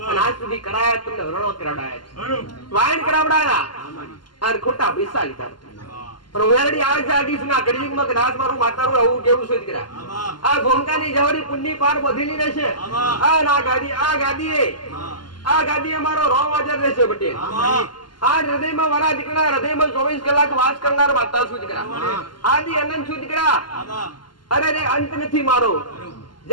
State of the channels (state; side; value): late; right; 0.71 ms